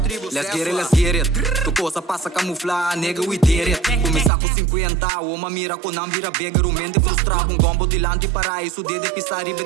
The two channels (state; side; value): drops out; left; at 4.3 s